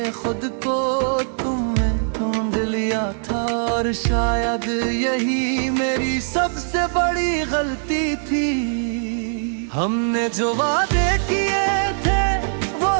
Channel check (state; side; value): silent; left; digital silence